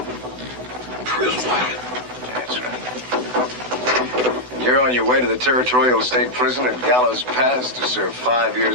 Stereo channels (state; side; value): late; left; 7.9 ms